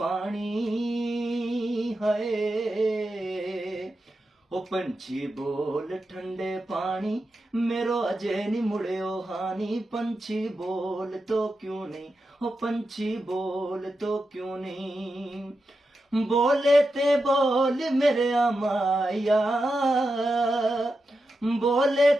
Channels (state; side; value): normal; both; correlation 0.89